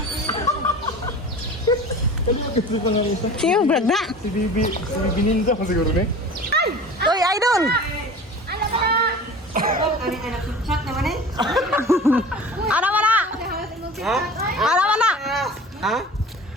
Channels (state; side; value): normal; both; correlation 0.39